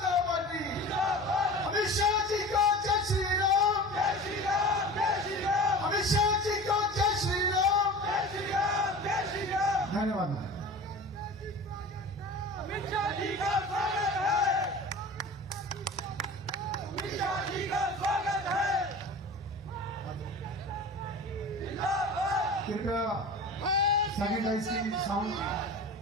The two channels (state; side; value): normal; both; correlation 0.36